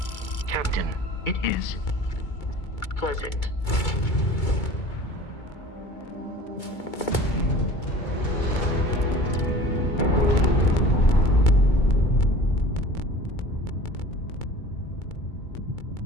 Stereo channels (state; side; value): late; right; 2.3 ms